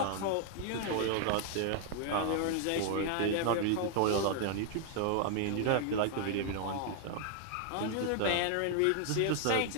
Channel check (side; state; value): both; different; correlation 0.00